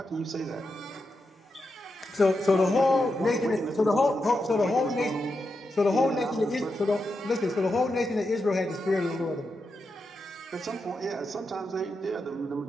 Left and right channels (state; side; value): normal; both; correlation 0.87